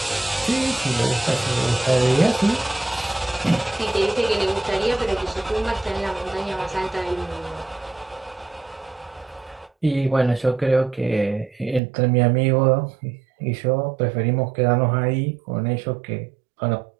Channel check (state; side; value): drops out; left; at 11.8 s